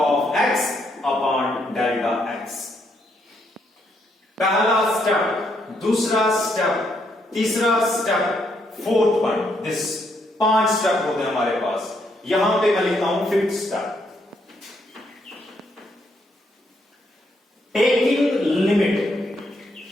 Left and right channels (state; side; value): normal; both; correlation 0.75